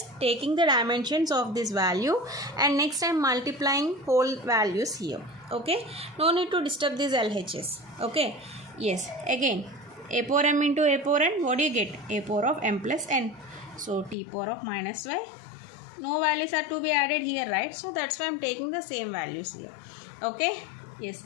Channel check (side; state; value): right; drops out; at 14.2 s